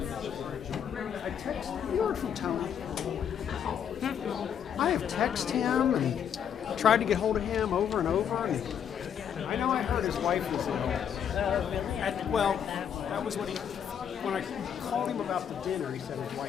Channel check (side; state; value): right; quieter; 8.5 dB